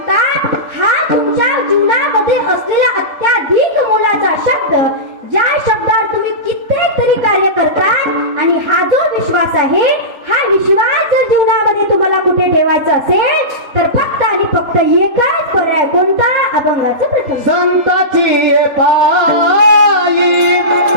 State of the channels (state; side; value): late; left; 3.9 ms